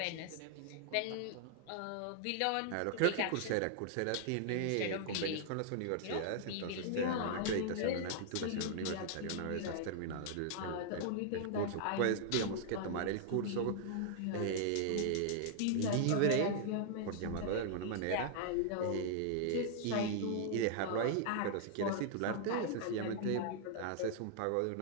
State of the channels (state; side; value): different; both; correlation -0.01